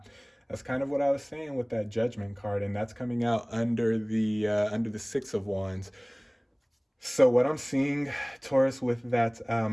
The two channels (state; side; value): identical; both; correlation 1.00